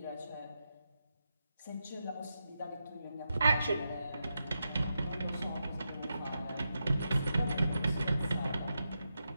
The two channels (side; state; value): both; inverted; correlation -0.87